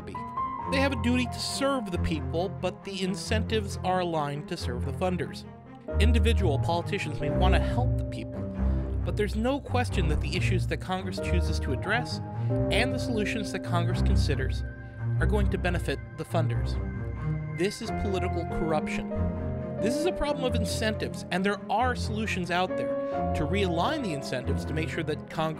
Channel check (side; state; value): both; identical; correlation 1.00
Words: They have a duty to serve the people, but the incentives are aligned to serve the funders. Individual politicians may want to help the people, but there's no question that the issues that Congress chooses to address and the solutions that Congress considers are going to benefit the funders. This is political corruption. This is a problem of incentives, and there are solutions out there to realign the incentives to make sure that